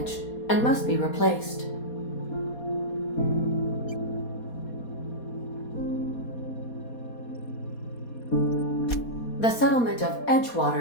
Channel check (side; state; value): right; late; 4.2 ms